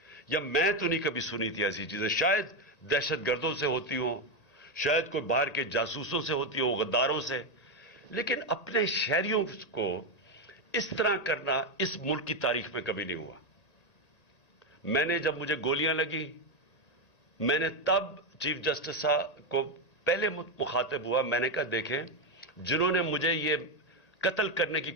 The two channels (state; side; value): late; right; 1.8 ms